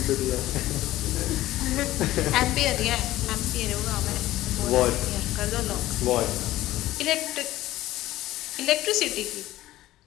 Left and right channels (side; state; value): right; quieter; 15.6 dB